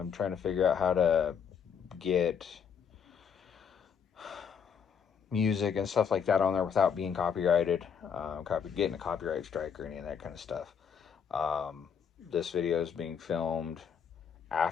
trying to figure out how to get music and stuff like that on there without being copyrighted, getting a copyright strike or any of that kind of stuff. This video is being filmed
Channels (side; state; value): right; quieter; 7.2 dB